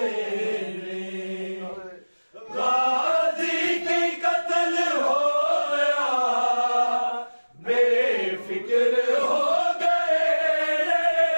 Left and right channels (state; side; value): inverted; both; correlation -1.00